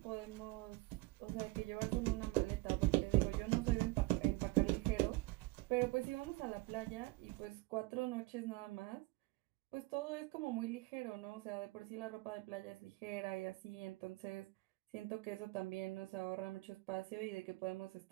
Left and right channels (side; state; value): left; quieter; 21.9 dB